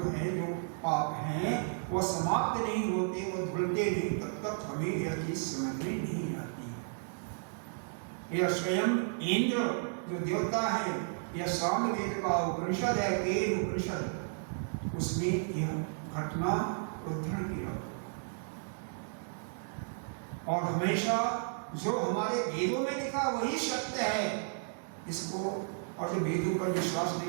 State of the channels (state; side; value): silent; left; digital silence